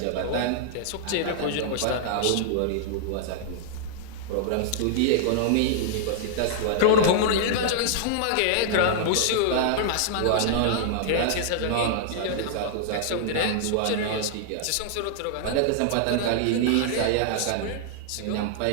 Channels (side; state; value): both; different; correlation -0.01